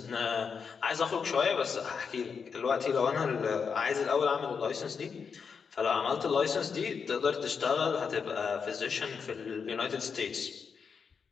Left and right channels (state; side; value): quieter; right; 6.0 dB